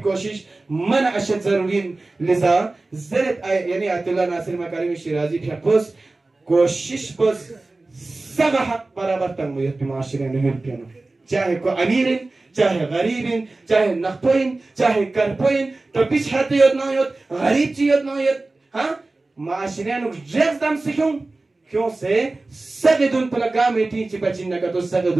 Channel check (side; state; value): left; quieter; 3.2 dB